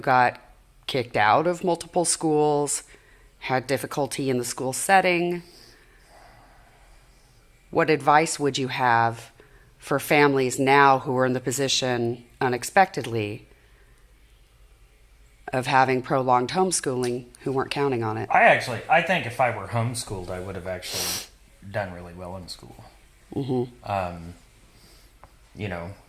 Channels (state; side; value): identical; both; correlation 1.00